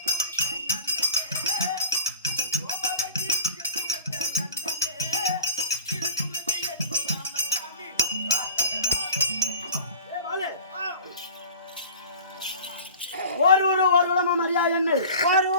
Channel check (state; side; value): inverted; both; correlation -0.37